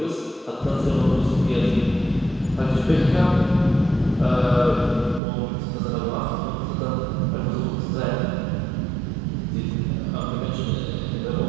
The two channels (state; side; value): drops out; left; at 5.2 s